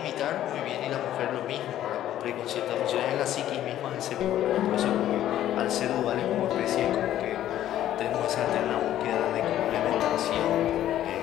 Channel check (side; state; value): right; quieter; 12.3 dB